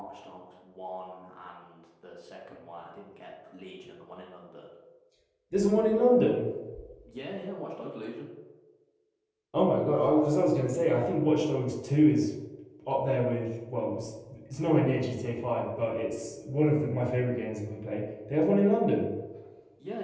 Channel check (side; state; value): both; identical; correlation 1.00